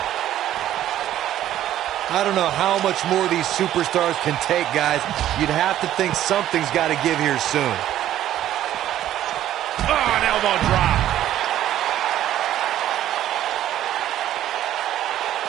I don't know how much more these superstars can take, guys. You'd have to think something's got to give here soon. Oh, an elbow drop.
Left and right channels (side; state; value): left; quieter; 12.3 dB